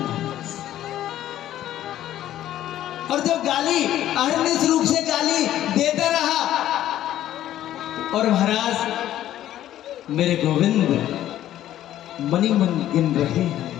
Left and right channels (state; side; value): quieter; right; 12.6 dB